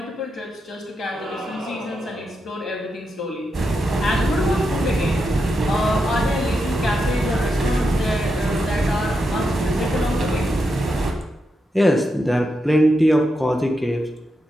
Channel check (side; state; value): both; normal; correlation 0.86